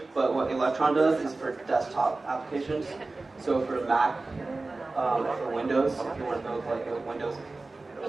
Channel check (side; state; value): left; quieter; 3.4 dB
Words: but what Electron does is for desktop applications. So for Mac, for Windows, if you want to build like a Windows